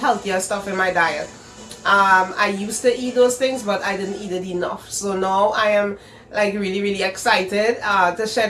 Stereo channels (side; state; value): both; identical; correlation 1.00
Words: stuff in my diet. I used to eat those things but I didn't eat it enough. So now I am like really excited to share